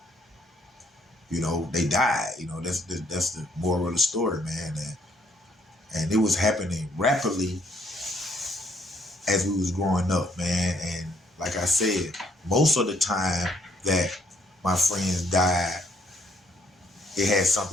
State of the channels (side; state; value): both; normal; correlation 0.67